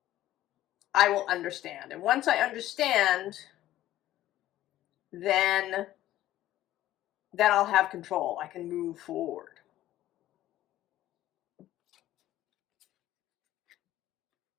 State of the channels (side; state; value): right; quieter; 14.1 dB